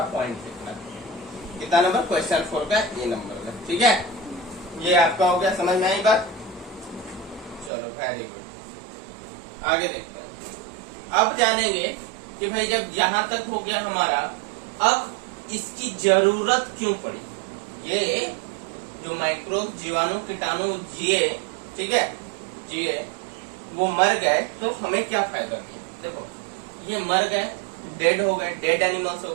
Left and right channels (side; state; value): left; drops out; at 7.7 s